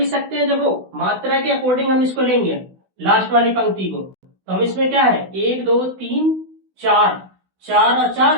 सकते हैं, देखो मात्रा के अकॉर्डिंग हम इसको लेंगे लास्ट वाली पंक्ति को। तो हम इसमें क्या है 1 2 3 4 4 और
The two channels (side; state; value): left; late; 16 ms